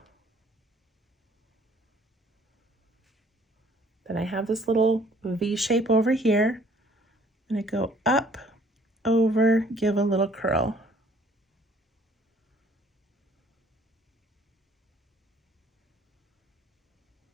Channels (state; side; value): normal; both; correlation 0.58